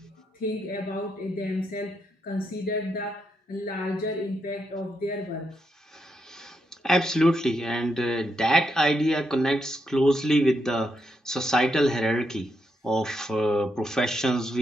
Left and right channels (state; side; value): normal; both; correlation 0.81